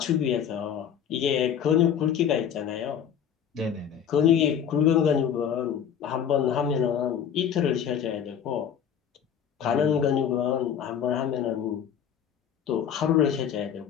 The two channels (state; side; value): quieter; right; 8.6 dB